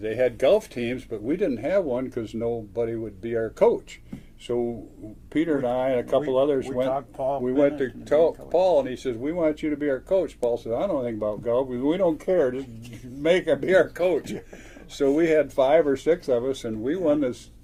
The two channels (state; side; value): identical; both; correlation 1.00